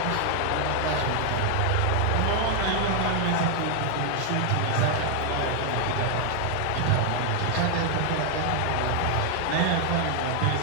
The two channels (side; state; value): both; different; correlation 0.00